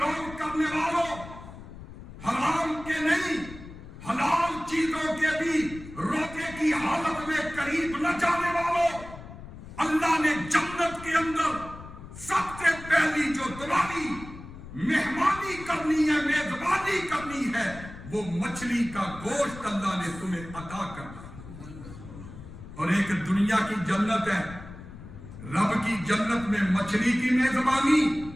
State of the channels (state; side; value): noise; left; rumble, 14 dB below the sound